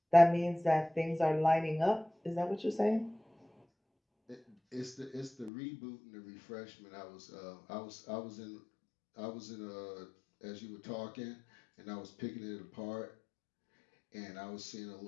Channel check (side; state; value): right; drops out; at 5.5 s